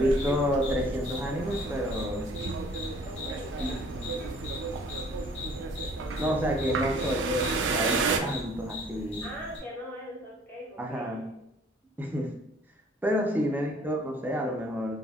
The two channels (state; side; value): normal; both; correlation 0.56